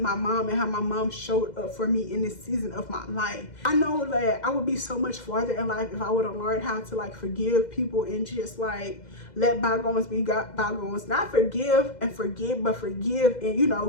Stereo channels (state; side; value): late; right; 2.0 ms